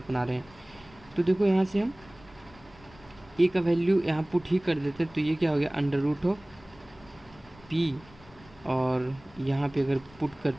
रहे हैं। तो देखो यहाँ से हम ए का वैल्यू यहाँ पुट ही कर देते हैं, तो ये क्या हो गया, अंडर रूट ऑफ पी, और यहाँ पे अगर पुट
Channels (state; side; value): noise; left; rumble, 24 dB below the sound